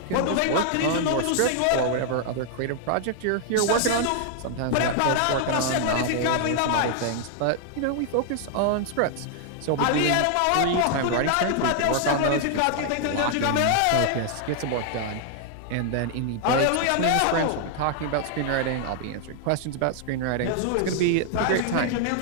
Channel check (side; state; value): both; different; correlation 0.00